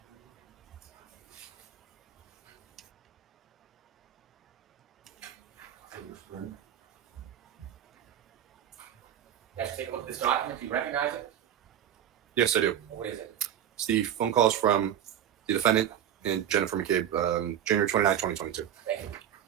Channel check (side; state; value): left; quieter; 10.2 dB